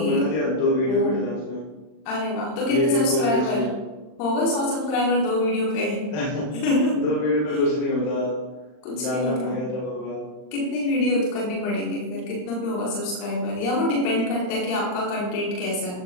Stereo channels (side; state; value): right; late; 39 ms